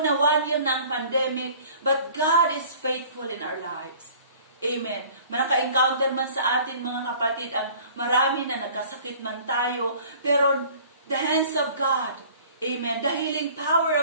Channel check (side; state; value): both; inverted; correlation -0.49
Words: na 1 year na ang pandemic, but God is faithful in our lives. Amen. Naka-encounter man sa atin mga kapatid ang marami na nagkasakit man tayo, pero the hands of God, amen, the healing power